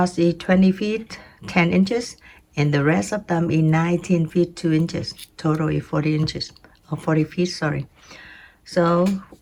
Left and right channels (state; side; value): identical; both; correlation 1.00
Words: is 20 feet, 10 inches, and the rest of them is 19 feet, 2 inches. Total is 40 inches, or 40 feet, sorry. So